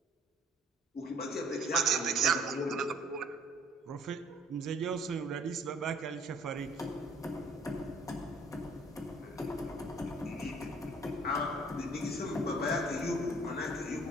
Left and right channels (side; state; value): both; normal; correlation 0.57